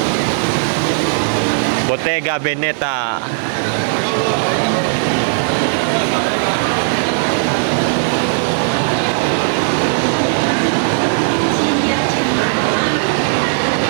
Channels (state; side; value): silent; left; digital silence